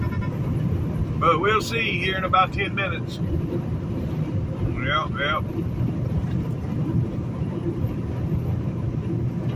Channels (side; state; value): both; identical; correlation 1.00